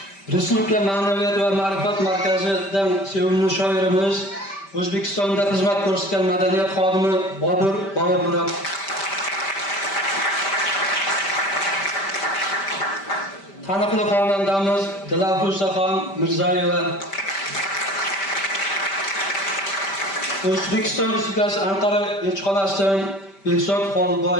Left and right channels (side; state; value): right; late; 5.1 ms